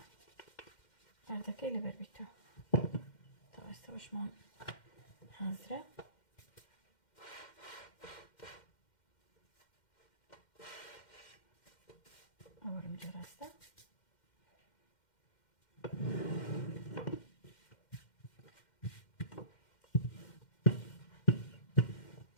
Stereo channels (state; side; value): late; right; 2.1 ms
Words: أردكا اللي بربيتو طبعا استوش مان حاضرة أورم جراستا